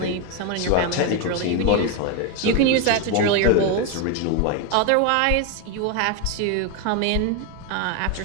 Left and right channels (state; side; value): different; both; correlation 0.02